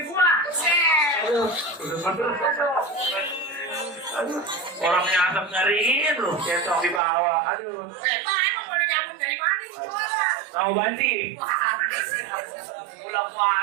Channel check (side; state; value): left; drops out; at 7.0 s